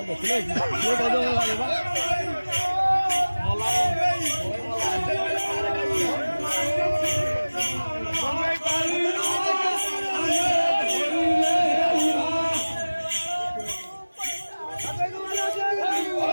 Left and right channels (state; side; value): inverted; both; correlation -1.00